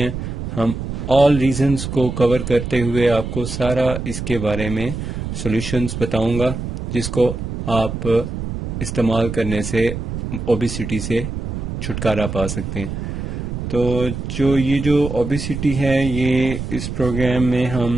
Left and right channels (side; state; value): right; noise; rumble, 5 dB below the sound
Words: ہم آل ریزنز کو کور کرتے ہوئے آپ کو سارا اس کے بارے میں سولوشنز بتاؤں گا، جس کو آپ استعمال کرنے سے اوبیسٹی سے چھٹکارا پا سکتے ہیں۔ تو یہ جو اوبیسٹی ہے، یہ اس پروگرام میں